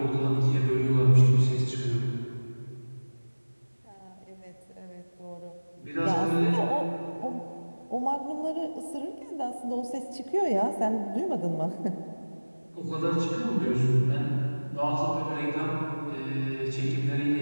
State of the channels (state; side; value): inverted; both; correlation -1.00